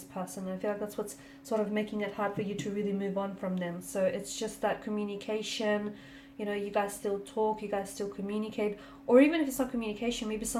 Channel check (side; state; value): both; identical; correlation 1.00